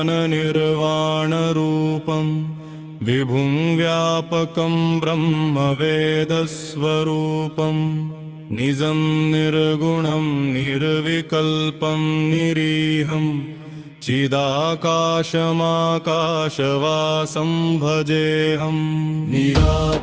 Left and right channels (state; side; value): identical; both; correlation 1.00